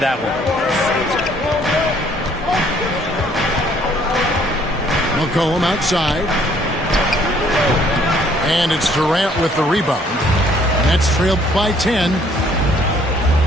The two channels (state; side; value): normal; both; correlation 0.62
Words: one. McCollum outside. And it's Durant with the rebound. Nets trailed by 10.